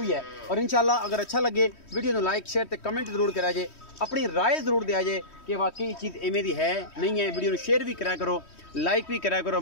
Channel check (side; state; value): right; late; 3.1 ms